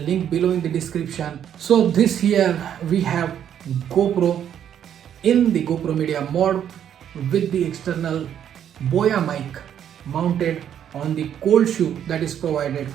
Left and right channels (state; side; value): quieter; left; 9.6 dB